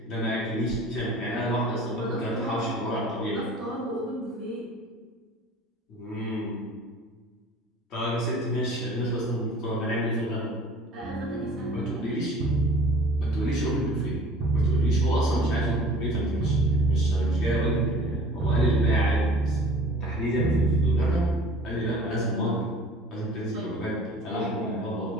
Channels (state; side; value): normal; both; correlation 0.46